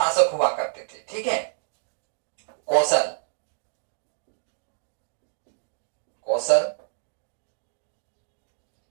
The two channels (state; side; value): silent; left; digital silence